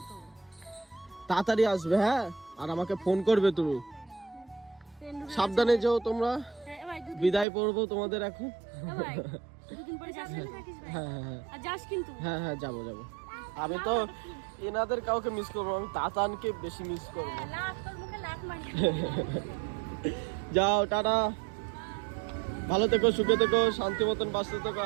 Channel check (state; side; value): drops out; left; at 7.5 s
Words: তো। তাড়াতাড়ি আসবে হ্যাঁ, আর আমাকে ফোন করবে তুমি। সাবধানে যেও তোমরা। বিদায় পড়বো তোমাদের এখন। দুদিন পরে যাবে। হ্যাঁ হ্যাঁ হ্যাঁ আর যাস কিন্তু। হ্যাঁ হ্যাঁ যাবো যাবো। আমি তো এনাদের কাউকে মিস করবো, আমি তাতানকে বেশি মিস করবো। তোর মুখে লাত মারি। যাও টাটা, ভালো থেকো, সুখে থেকো, শান্তি মতন বাঁচতে থেকো।